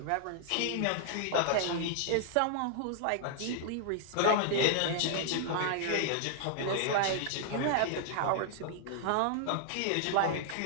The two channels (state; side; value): different; both; correlation -0.01